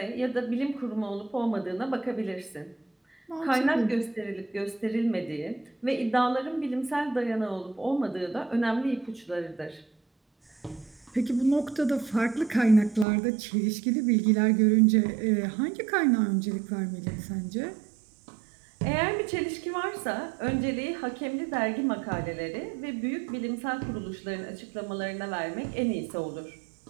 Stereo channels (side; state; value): left; drops out; at 13.1 s